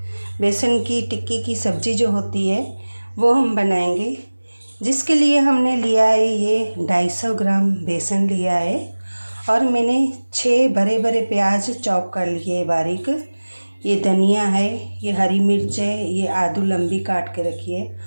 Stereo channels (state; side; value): inverted; both; correlation -1.00